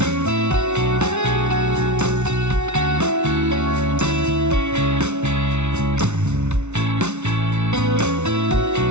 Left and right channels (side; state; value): left; late; 0.82 ms